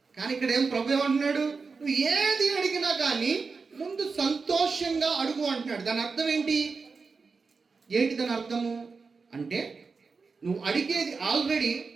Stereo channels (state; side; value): quieter; left; 4.7 dB